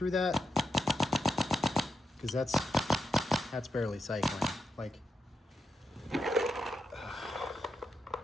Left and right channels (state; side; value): normal; both; correlation 0.85